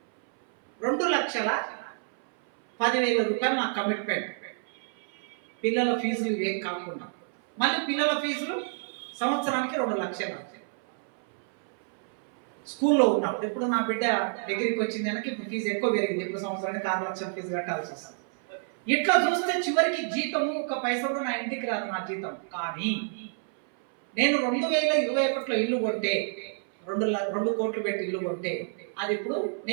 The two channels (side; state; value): left; silent; 59 dB below the other